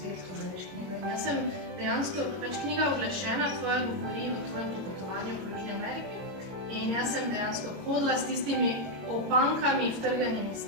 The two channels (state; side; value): late; left; 22 ms